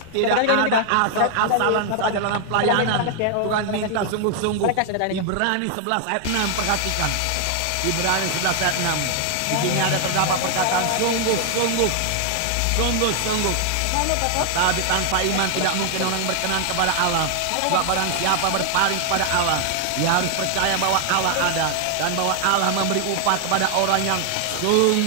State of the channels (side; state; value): both; different; correlation 0.00